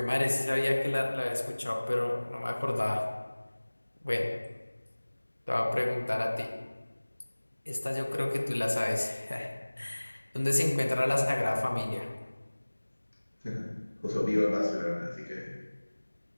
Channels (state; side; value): inverted; both; correlation -1.00